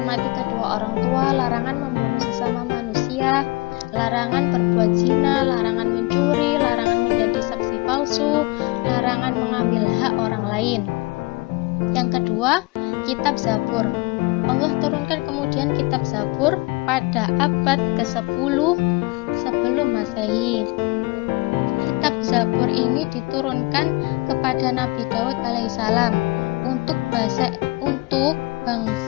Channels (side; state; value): right; quieter; 24.6 dB